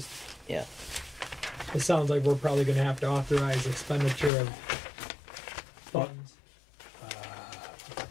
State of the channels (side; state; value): right; drops out; at 4.3 s